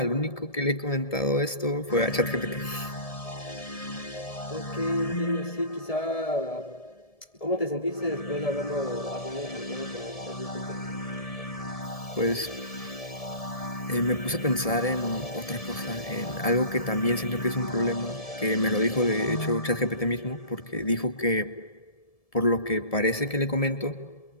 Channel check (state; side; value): late; right; 1.7 ms